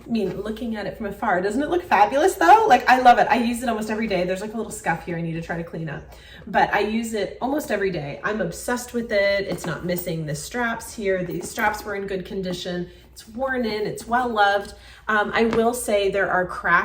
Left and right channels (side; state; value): both; identical; correlation 1.00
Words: I mean, looking at it from afar, doesn't it look fabulous though? Like, I love it. I use it almost every day. There's like a little scuff here I need to try to clean up, but I use it almost every day. I'm obsessed with it. It's not missing the straps here. These straps were in good condition. It's worn in, it's well loved. I will say there are